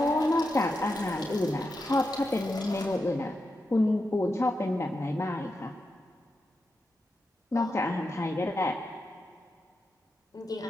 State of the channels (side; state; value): both; normal; correlation 0.87